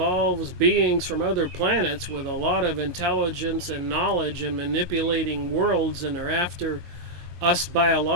beings from other planets with a lot of intelligence and knowledge and manipulating worlds, and are after us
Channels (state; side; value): late; left; 22 ms